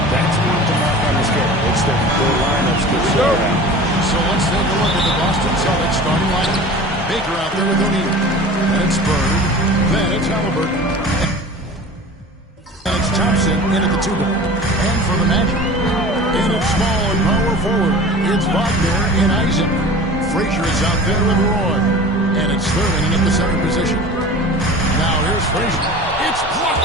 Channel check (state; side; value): normal; both; correlation 0.38